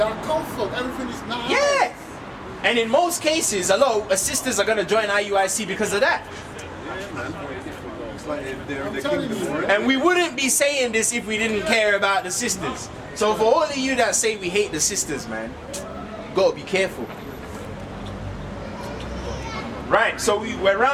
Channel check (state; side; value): identical; both; correlation 1.00